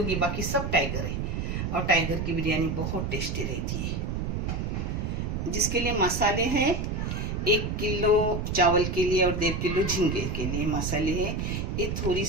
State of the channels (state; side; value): noise; right; rumble, 2 dB below the sound